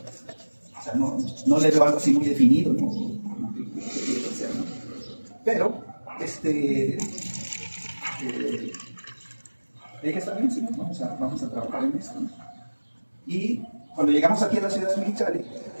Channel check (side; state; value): both; inverted; correlation -1.00